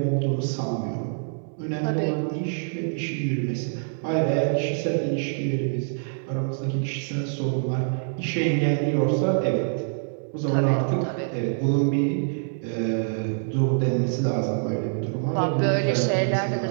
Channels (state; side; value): silent; left; digital silence